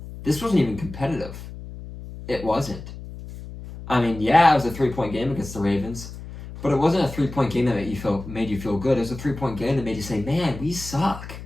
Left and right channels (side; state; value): left; noise; hum, 12 dB below the sound